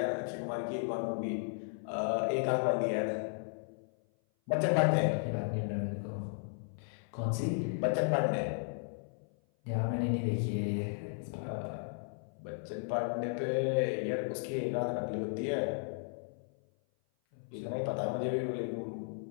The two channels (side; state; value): right; silent; 54 dB below the other